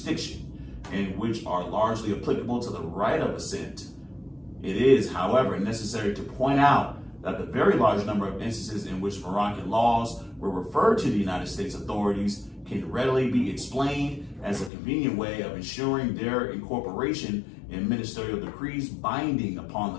and which are largely applicable to the right of assent. It is, however, necessary to point out that the very large number of instances in which Moroccan laws were referred to the United States authorities can readily be explained as a convenient way of ensuring their incorporation in ministerial decrees binding upon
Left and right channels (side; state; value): right; drops out; at 14.7 s